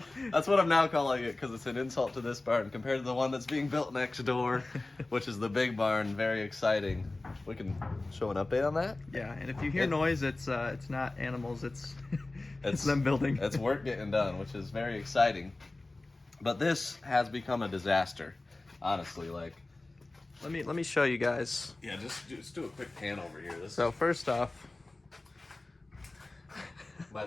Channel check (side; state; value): right; quieter; 3.0 dB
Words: what I'm now calling it because it's an insult to this barn compared to the one that's being built next door, which is the big barn. Very exciting. We can show an update on that. Yeah, and if you hear noise, it's not animals. It's it's them building. It's work getting done, which is very exciting. But this has become a disaster, honestly. Like, let me show you guys. Yeah, just do a quick pan over here. So first off, my